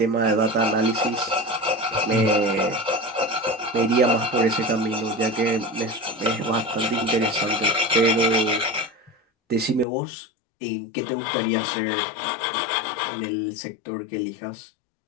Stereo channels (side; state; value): right; drops out; at 9.9 s